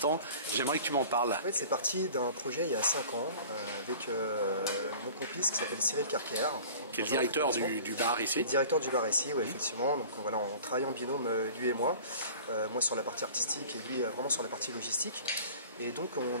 J'aimerais que tu m'en parles. En fait, c'est parti d'un projet il y a 5 ans avec mon complice qui s'appelle Cyril Carker. Qui est le directeur du bar ici. Le directeur du bar ici, oui, effectivement. Donc voilà, on travaille en binôme, lui et moi. Moi sur la partie artistique et lui vraiment sur la partie logistique. Et donc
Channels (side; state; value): both; inverted; correlation -0.43